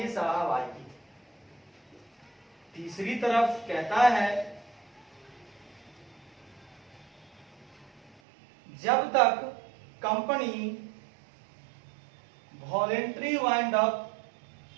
साहब आइए, तीसरी तरफ कहता है जब तक कंपनी वॉलेंट्री वाइंड अप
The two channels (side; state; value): left; drops out; at 8.2 s